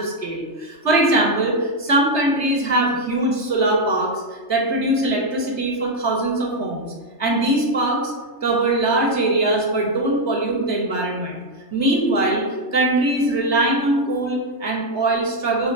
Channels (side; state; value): right; late; 3.3 ms